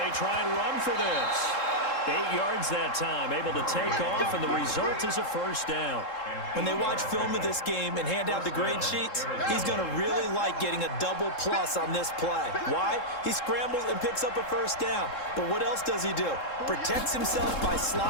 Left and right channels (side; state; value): right; late; 3.7 ms